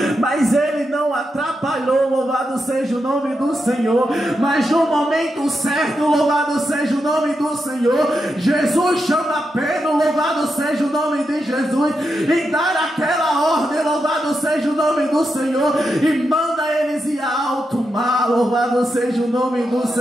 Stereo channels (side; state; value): both; normal; correlation 0.86